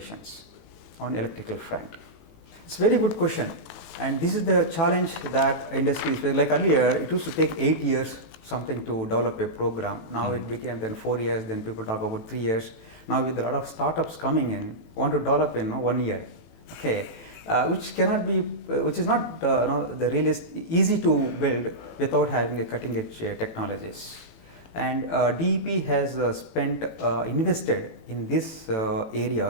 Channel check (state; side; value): late; right; 18 ms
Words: on electrical front. It's a very good question, and this is the challenge that industry is. Like earlier, it used to take 8 years something to develop a program. Now it became then 4 years. Then people talk about 3 years. Now with a lot of startups coming in, want to develop in 1 year. Okay, which cannot be, which is not the easy to build without having a cutting edge technologies. And DEP has invested in these